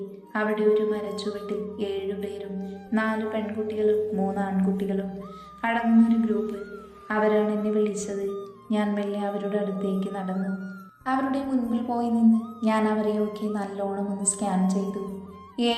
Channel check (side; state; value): both; identical; correlation 1.00